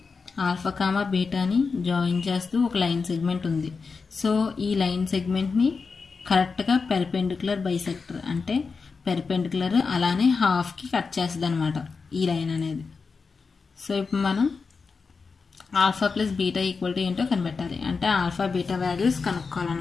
ఆల్ఫా, బీటాని జాయిన్ చేస్తూ ఒక లైన్ సెగ్మెంట్ ఉంది. సో ఈ లైన్ సెగ్మెంట్ని కరెక్ట్గా పెర్పెండిక్యులర్ బైసెక్టర్ అంటే పెర్పెండిక్యులర్ అలానే హాఫ్కి కట్ చేస్తుంది అనమాట ఈ లైన్ అనేది. సో ఇప్పుడు మనం alpha plus beta equal to ఏంటో కనిపెట్టాలి. అంటే ఆల్ఫా బీటా వాల్యూస్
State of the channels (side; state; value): right; quieter; 4.8 dB